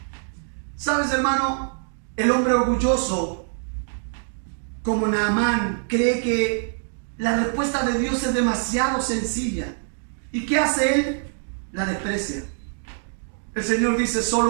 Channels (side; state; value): left; silent; 62 dB below the other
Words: ¿Sabes, hermano? El hombre orgulloso, como Naamán, cree que la respuesta de Dios es demasiado sencilla. ¿Y qué hace él? La desprecia. El Señor dice: